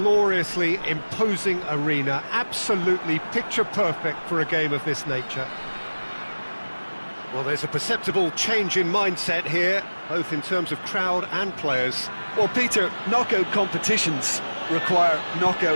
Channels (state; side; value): inverted; both; correlation -1.00